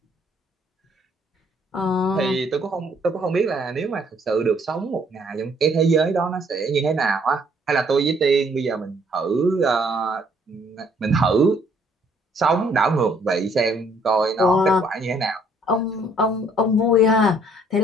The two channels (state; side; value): normal; both; correlation 0.64